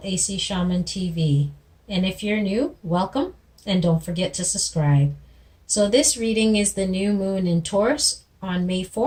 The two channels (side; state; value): both; identical; correlation 1.00